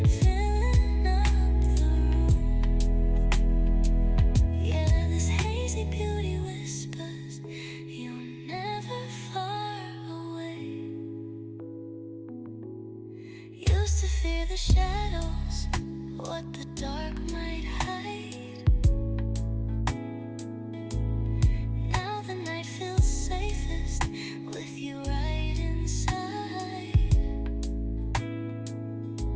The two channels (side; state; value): both; identical; correlation 1.00